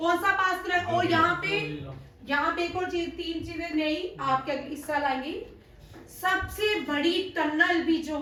सा पास कनेक्ट? और यहाँ पे एक और चीज, 3 चीजें नई आपके इस साल आएंगी। सबसे बड़ी टनल भी जो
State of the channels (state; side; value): identical; both; correlation 1.00